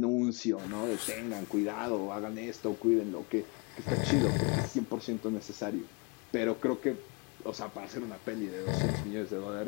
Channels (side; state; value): right; quieter; 31.3 dB